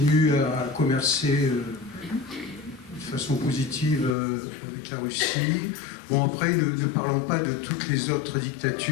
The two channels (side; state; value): right; drops out; at 4.2 s